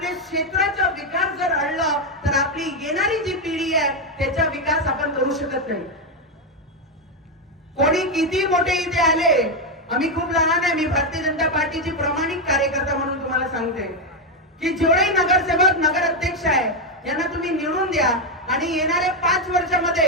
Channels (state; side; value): normal; both; correlation 0.05